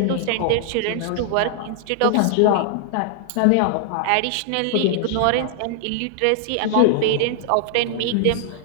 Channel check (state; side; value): different; both; correlation 0.00